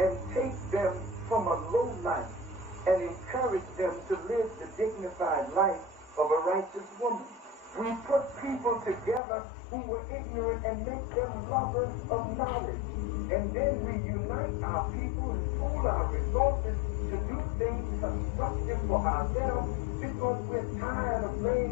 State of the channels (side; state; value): right; drops out; at 9.2 s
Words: take them from a low life and encourage them to live the dignified life of a righteous woman. We put people together who were ignorant and make them lovers of knowledge. And then we unite our people and pool our resources to do things constructive for ourselves because we're tired of